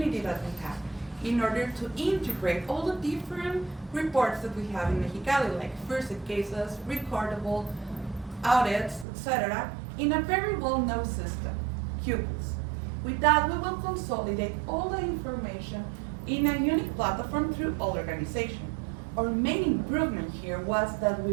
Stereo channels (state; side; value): drops out; left; at 9.1 s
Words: that we have in order to integrate all the different reports that we have in Mexicali, like first aid cases, recordable, audits, etc., in a very well-known system, Pupils. With that, we will consolidate all the information in a unique platform through all organization. Our main improvement here was that we